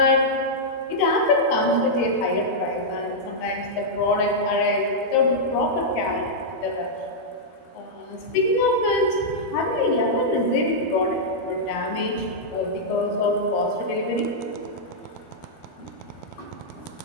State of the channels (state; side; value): late; right; 13 ms